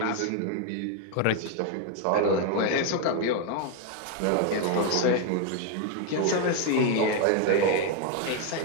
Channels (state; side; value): different; both; correlation 0.01